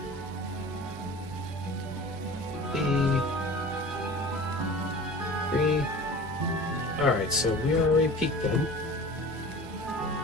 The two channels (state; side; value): normal; both; correlation 0.39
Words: Alright, so we already peaked then.